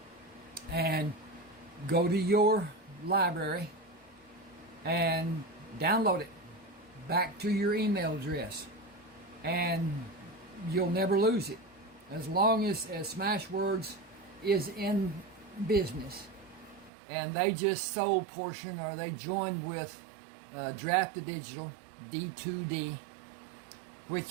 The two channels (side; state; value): left; drops out; at 16.9 s